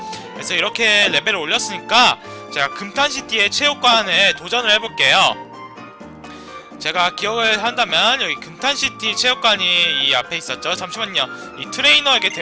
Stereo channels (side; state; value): both; identical; correlation 1.00